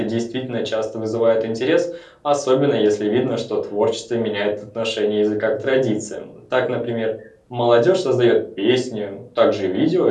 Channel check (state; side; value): identical; both; correlation 1.00